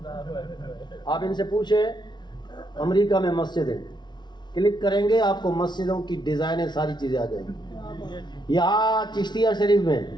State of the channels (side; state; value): right; late; 0.21 ms